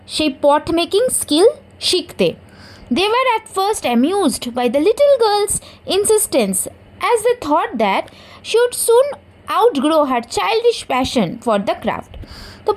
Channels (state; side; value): identical; both; correlation 1.00